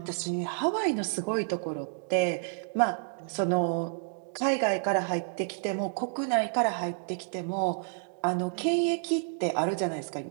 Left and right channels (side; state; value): left; silent; digital silence